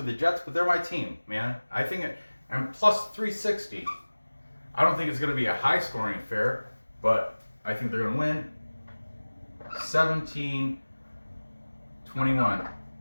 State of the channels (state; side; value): inverted; both; correlation -1.00